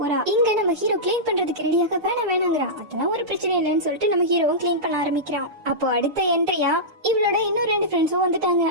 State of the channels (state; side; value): late; left; 6.7 ms